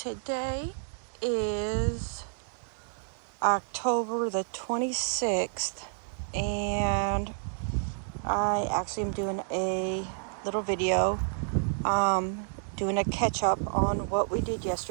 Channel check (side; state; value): left; silent; 58 dB below the other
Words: is October the 26th, and I actually am doing a little video, doing a catch up on what we did